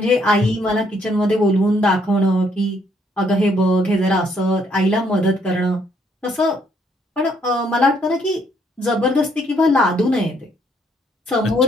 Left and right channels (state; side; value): normal; both; correlation 0.69